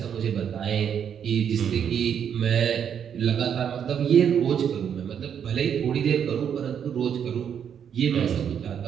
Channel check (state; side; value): quieter; left; 8.3 dB